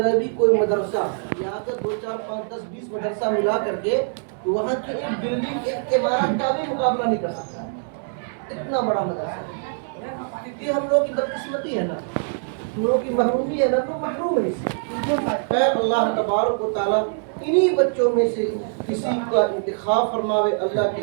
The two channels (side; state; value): left; silent; 63 dB below the other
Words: بھی کوئی مدرسہ، یہاں کا 2 4 5 10 20 مدرسہ ملا کر کے وہاں کی ایک بلڈنگ ایک عمارت کا بھی مقابلہ نہیں کر سکتا، اتنا بڑا مدرسہ۔ کیونکہ ہم لوگ کی بدقسمتی ہے نا، ہم لوگ کی محرومی ہے نا، تو محروم ہے اس سے۔ خیر اللہ تبارک و تعالیٰ انہی بچوں میں سے کسی کا انتخاب فرماوے، اللہ